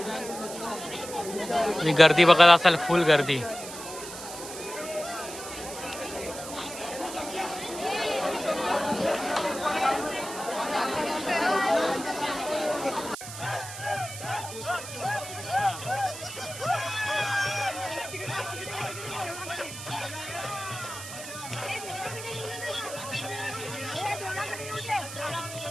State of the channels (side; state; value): right; noise; hiss, 11 dB below the sound